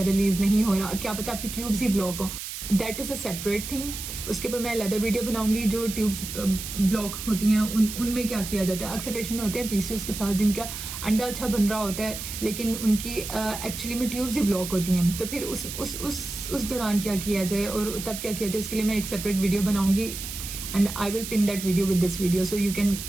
रिलीज नहीं हो रहा, क्या पता आपकी ट्यूब्स ही ब्लॉक हो, that is a separate thing. उसके ऊपर मैं अलग वीडियो बनाऊंगी। जो ट्यूब्स ब्लॉक होती हैं उनमें क्या किया जाता है। अक्सर पेशेंट होते हैं पीसीओएस के साथ जिनका अंडा अच्छा बन रहा होता है लेकिन उनकी एक्चुअली में ट्यूब्स ही ब्लॉक होती हैं, तो फिर उस दौरान क्या किया जाए और तब क्या किया जाए, उसके लिए मैं एक सेपरेट वीडियो बनाऊंगी and I will pin that video with this video so you can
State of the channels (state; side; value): noise; right; hiss, 8 dB below the sound